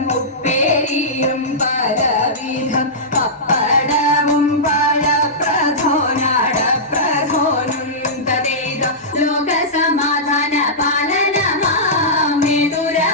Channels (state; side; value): normal; both; correlation -0.15